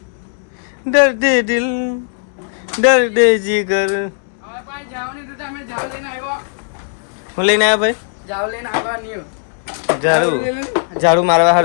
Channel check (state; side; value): silent; right; 68 dB below the other